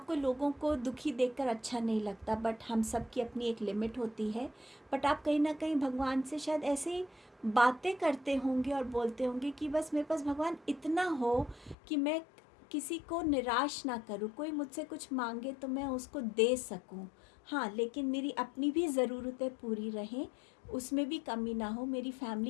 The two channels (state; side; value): drops out; right; at 11.8 s